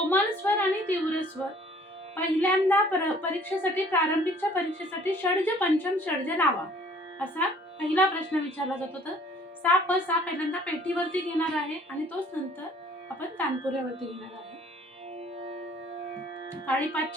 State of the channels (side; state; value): both; normal; correlation 0.56